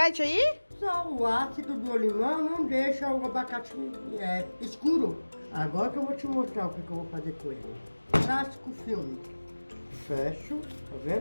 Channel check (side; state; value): both; inverted; correlation -1.00